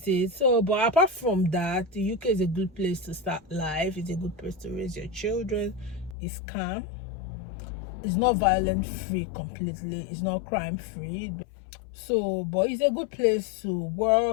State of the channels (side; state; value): right; drops out; at 6.2 s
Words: it. So, but apart from that, the UK is a good place to start life. It's a good place to raise your children. It's calm. It's not violent free completely. It's not crime free. So, but it's a good place to